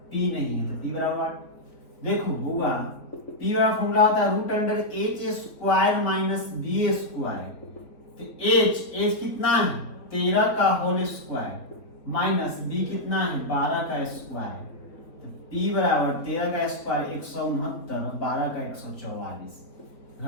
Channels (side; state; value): right; late; 3.7 ms